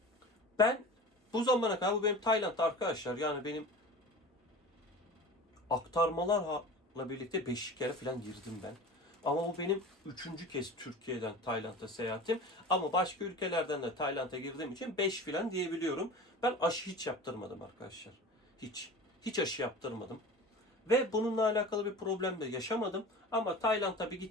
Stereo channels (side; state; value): both; normal; correlation 0.36